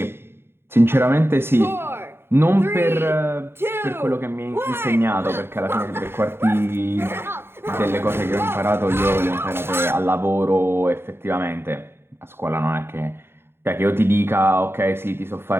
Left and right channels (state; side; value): late; left; 0.11 ms